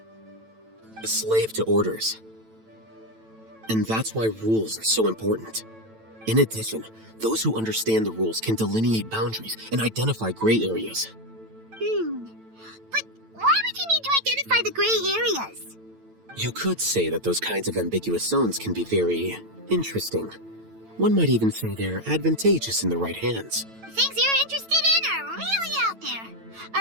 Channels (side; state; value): left; late; 9.0 ms